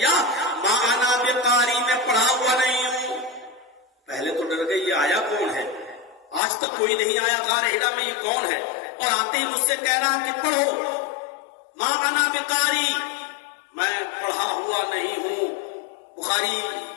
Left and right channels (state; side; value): drops out; right; at 6.4 s